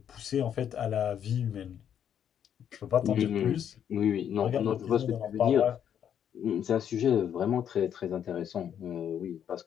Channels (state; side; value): quieter; right; 9.1 dB